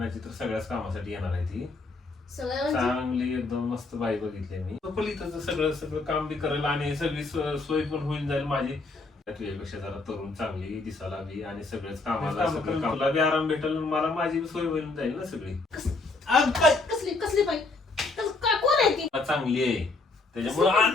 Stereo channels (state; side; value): quieter; right; 3.6 dB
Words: आणायची तर सगळ्याच कामासाठी येणार आहे ती. चांगली एकदम मस्त बाई बघितली मी. पलीकडचं सगळं सगळं काम बी करेल आणि सगळी सोय पण होईल जाईल माझी. तुझ्यापेक्षा जरा तरुण चांगली दिसायला बी आणि सगळेच कामाला तुला बी आराम भेटेल मला माझी बी सोय होईल जाईल ना सगळी. कसली कसली बाई कोण आहे ती? चांगली आहे त्याच्यामुळे